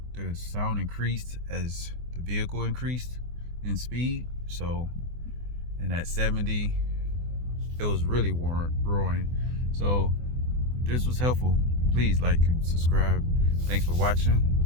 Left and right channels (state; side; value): late; left; 24 ms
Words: sound increased as the vehicle increased in speed. So, and at 70, it was really roaring. So if this was helpful, please like and subscribe. Thanks for watching.